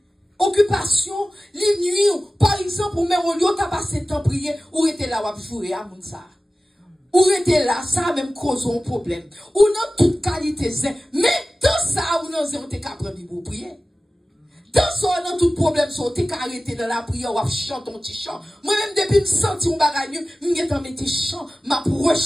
Occupation, les nuits, par exemple, ou même au lieu de passer temps prier, ou était là, ou jouer à Mounsa. Ou était là, ça même cause un problème. Ou non toute qualité, mais dans ça, ou non, on t'es capable de prier. Dans ça, dans tout problème, on t'es arrêté dans la prière, ou chanter ton petit chant. Moi-même, depuis me sentir un bagage, je me dans mes petits chants, m'a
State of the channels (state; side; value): normal; both; correlation 0.96